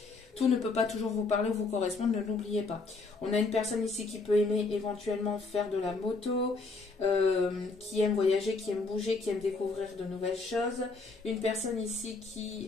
Tout ne peut pas toujours vous parler ou vous correspondre, ne l'oubliez pas. On a une personne ici qui peut aimer éventuellement faire de la moto, qui aime voyager, qui aime bouger, qui aime découvrir de nouvelles choses. Une personne ici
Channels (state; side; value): quieter; right; 3.8 dB